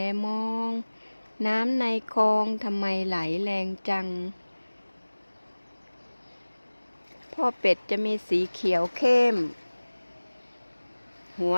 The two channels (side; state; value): both; inverted; correlation -1.00